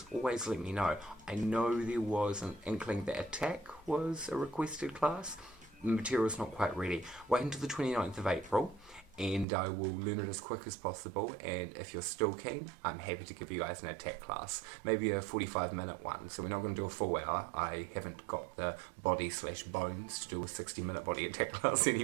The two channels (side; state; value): left; drops out; at 9.5 s